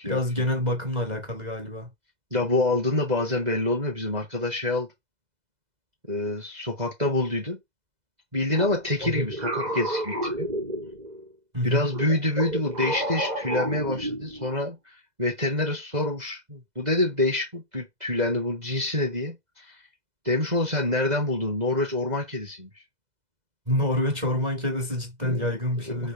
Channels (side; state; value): left; late; 2.0 ms